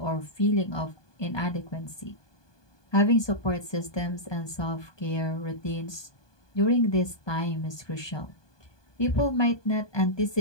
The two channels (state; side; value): late; right; 1.2 ms